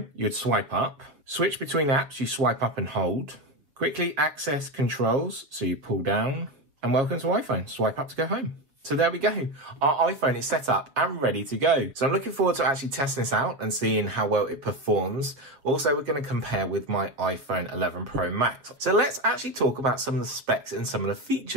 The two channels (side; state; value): left; late; 6.9 ms